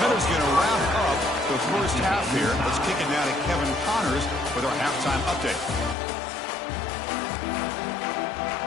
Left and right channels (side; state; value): right; drops out; at 6.0 s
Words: Miller's going to wrap up the first half here. Let's kick it now to Kevin Connors with our halftime update.